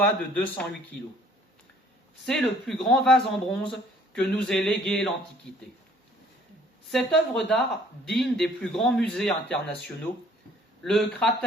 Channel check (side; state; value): both; normal; correlation 0.58